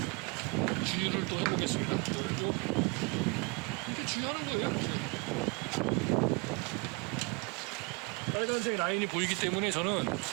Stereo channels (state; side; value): quieter; left; 29.2 dB